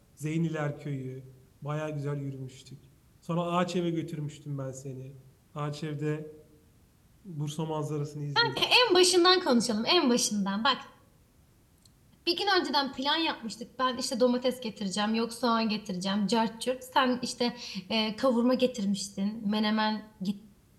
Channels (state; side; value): identical; both; correlation 1.00